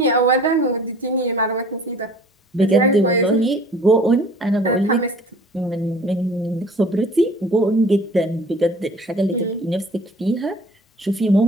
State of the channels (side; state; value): both; normal; correlation 0.48